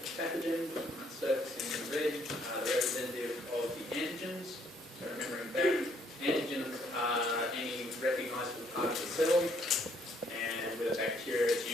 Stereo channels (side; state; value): both; normal; correlation 0.67